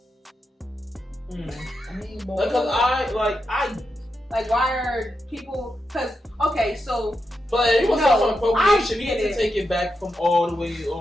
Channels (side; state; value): both; normal; correlation 0.86